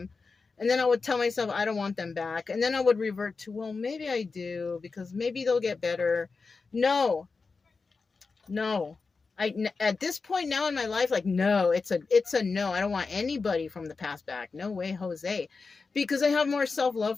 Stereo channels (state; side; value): quieter; right; 4.4 dB